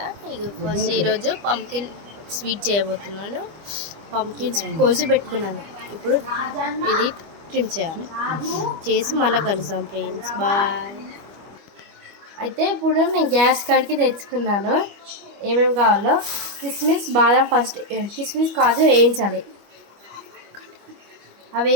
ఇక ఫస్ట్ ఈరోజు పంకిన్ స్వీట్ చేయబోతున్నాను. పంకిన్స్ కోసి పెట్టుకున్నాను. ఇప్పుడు ఇది ట్రిమ్ చేయాలి. చేసి మళ్ళీ కలుస్తాం ఫ్రెండ్స్. బాయ్. అయితే ఇప్పుడు నేను గ్యాస్ కాడికి తెచ్చుకున్నాను. ఏమేమి కావాలో కిస్మిస్, బాదం, ఫస్ట్ కిస్మిస్ కాజు వేయించాలి. అవి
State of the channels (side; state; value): left; late; 25 ms